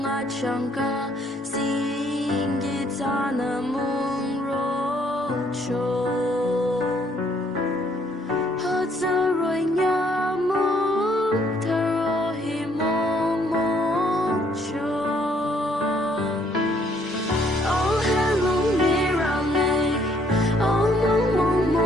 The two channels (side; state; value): both; normal; correlation 0.66